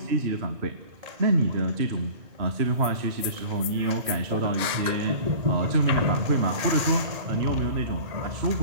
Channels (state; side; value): late; left; 1.9 ms